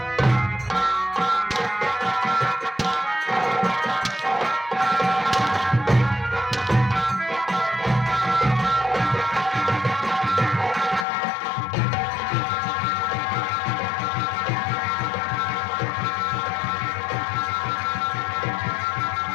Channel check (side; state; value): right; drops out; at 11.1 s